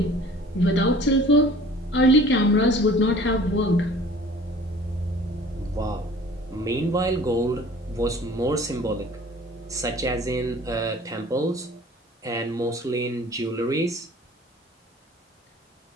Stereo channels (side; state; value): both; normal; correlation 0.48